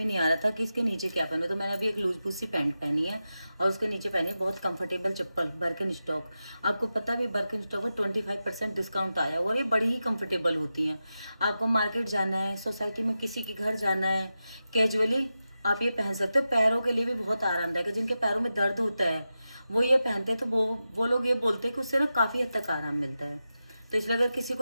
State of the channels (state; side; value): inverted; both; correlation -0.91